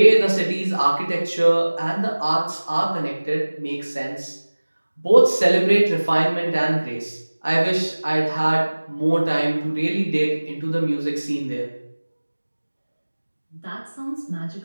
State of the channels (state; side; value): inverted; both; correlation -1.00